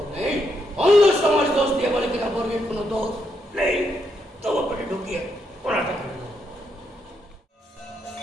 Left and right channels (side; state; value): both; normal; correlation 0.79